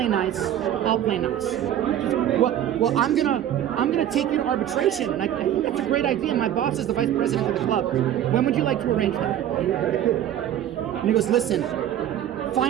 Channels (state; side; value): quieter; left; 11.2 dB